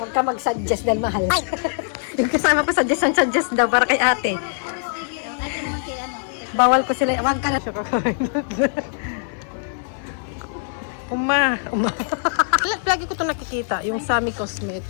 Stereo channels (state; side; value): silent; right; digital silence